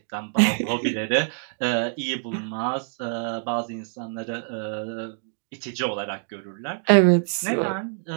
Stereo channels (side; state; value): left; silent; 61 dB below the other